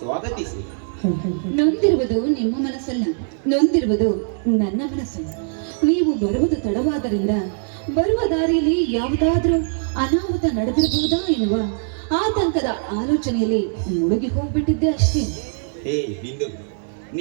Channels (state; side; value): silent; left; 65 dB below the other